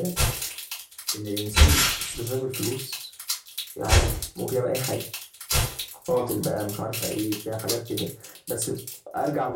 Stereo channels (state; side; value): identical; both; correlation 1.00